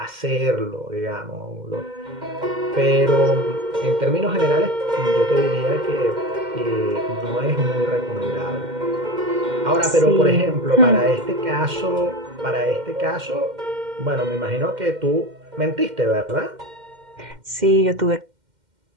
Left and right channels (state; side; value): late; left; 2.1 ms